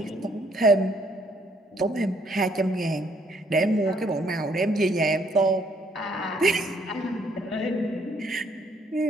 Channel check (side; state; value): both; normal; correlation 0.67